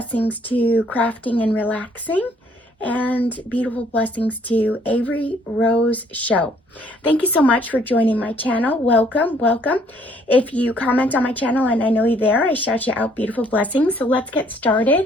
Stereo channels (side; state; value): both; normal; correlation 0.64